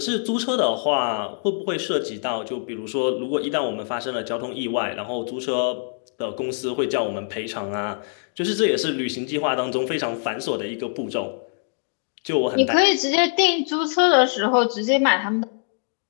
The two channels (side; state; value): right; silent; 63 dB below the other